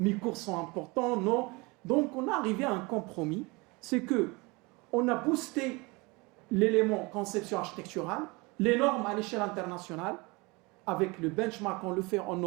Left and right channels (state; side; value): quieter; left; 25.8 dB